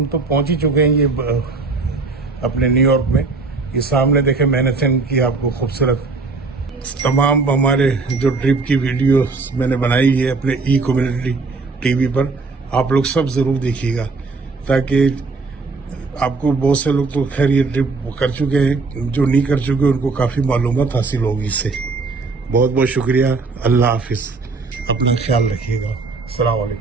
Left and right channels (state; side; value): quieter; left; 4.0 dB